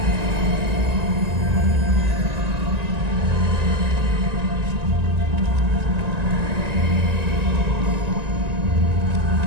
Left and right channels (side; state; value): left; late; 1.9 ms